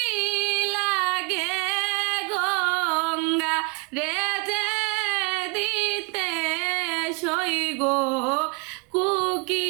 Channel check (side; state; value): left; quieter; 31.4 dB